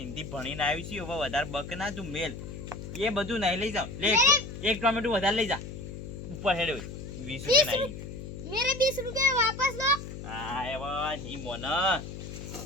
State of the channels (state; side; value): noise; left; hum, 10 dB below the sound